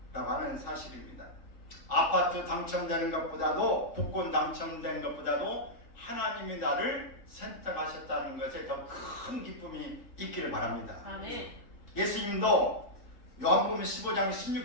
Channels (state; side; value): late; right; 3.5 ms